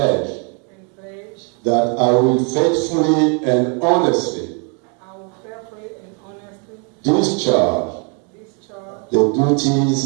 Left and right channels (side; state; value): left; quieter; 37.6 dB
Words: and pledge that I will faithfully and honestly I will faithfully and honestly discharge discharge the